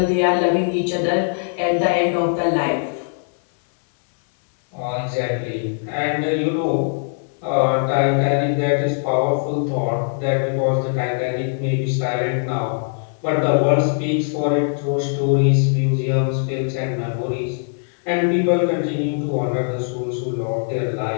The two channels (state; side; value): silent; right; digital silence